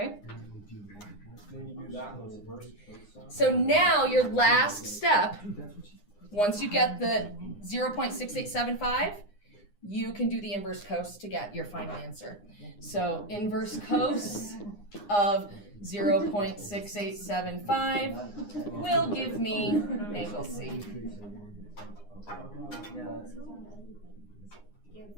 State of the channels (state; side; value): late; right; 9.8 ms